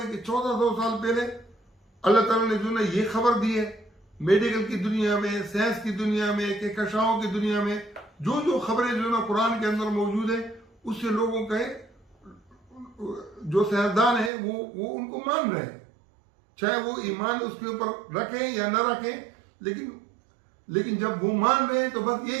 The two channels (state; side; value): drops out; left; at 14.3 s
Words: हैं कि 1400 साल पहले अल्लाह ताला ने जो ना ये खबर दी है, मेडिकल की दुनिया में, साइंस की दुनिया में, कहकशाओं की दुनिया में जो जो खबरें जो ना कुरान के अंदर मौजूद है, उससे लोगों के जो साइंसदान है वो उनको मान रहे हैं, चाहे वो ईमान उसके ऊपर रखें या न रखें। लेकिन जब वो मान रहे हैं तो बस